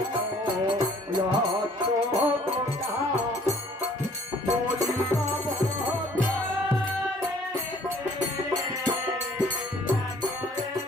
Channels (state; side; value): normal; both; correlation 0.57